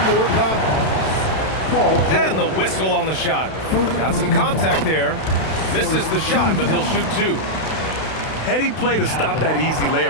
more common. And the whistle on the shot. Got some contact there. Misses the shot, but he'll shoot two. Heady play to stop that easy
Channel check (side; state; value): right; late; 32 ms